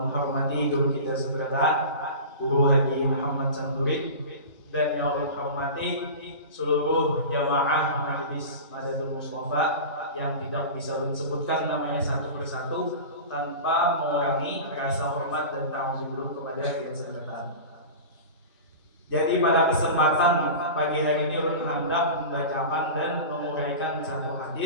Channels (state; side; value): inverted; both; correlation -0.31